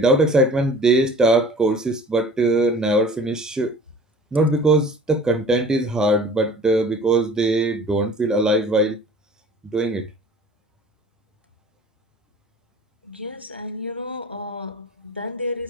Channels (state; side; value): normal; both; correlation 0.45